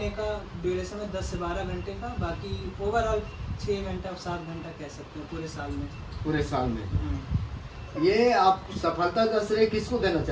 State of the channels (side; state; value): both; identical; correlation 1.00